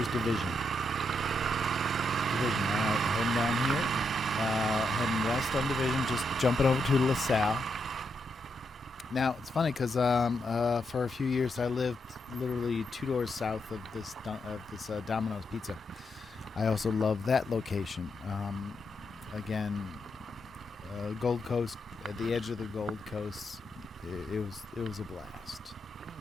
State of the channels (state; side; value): normal; both; correlation 0.82